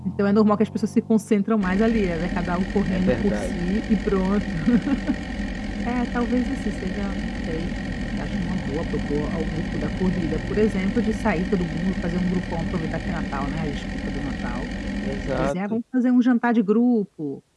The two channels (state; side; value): identical; both; correlation 1.00